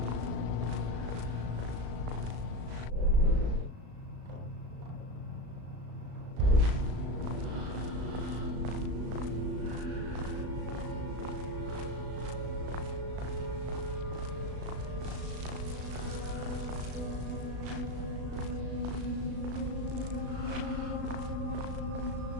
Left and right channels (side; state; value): left; late; 36 ms